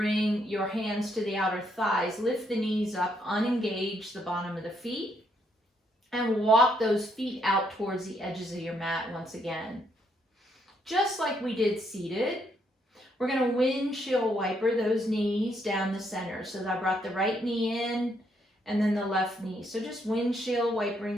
your hands to the outer thighs, lift the knees up, unengage the bottom of the feet, and walk those feet out towards the edges of your mat once again. Just like we did seated, we're going to windshield wiper those knees down the center. So I brought the right knee in and then the left knee. So just windshield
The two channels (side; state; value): both; normal; correlation 0.74